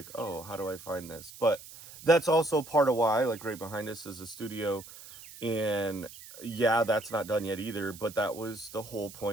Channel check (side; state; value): right; noise; hiss, 17 dB below the sound